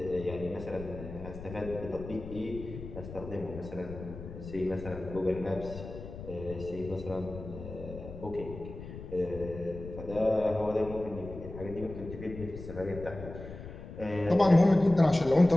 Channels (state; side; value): noise; left; rumble, 12 dB below the sound